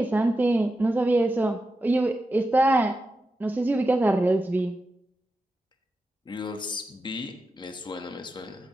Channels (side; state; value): both; normal; correlation 0.90